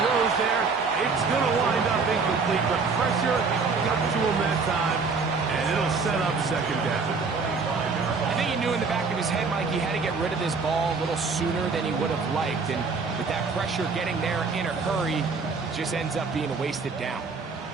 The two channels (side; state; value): left; quieter; 4.7 dB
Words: there. It's going to wind up incomplete. The pressure got to him that time, and it'll set up second down. I think he knew in the back of his head, Mike, he had to get rid of this ball a little sooner than he would have liked. And with that pressure getting there in a hurry, it just ends up being a wasted down.